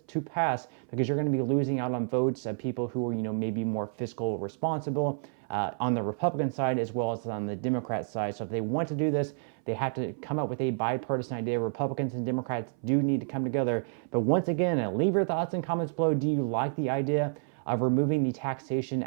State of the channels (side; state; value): left; silent; 58 dB below the other